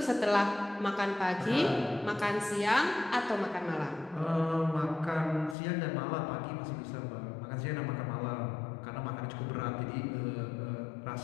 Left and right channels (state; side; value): drops out; right; at 5.6 s